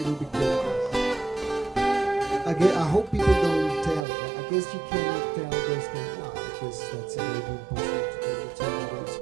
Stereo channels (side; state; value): left; drops out; at 4.0 s